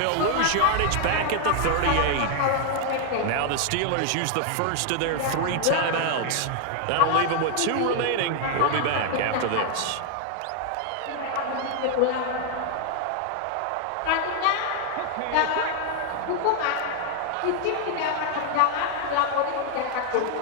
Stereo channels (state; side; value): different; both; correlation 0.00